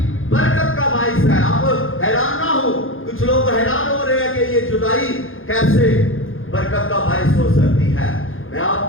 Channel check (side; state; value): right; late; 0.59 ms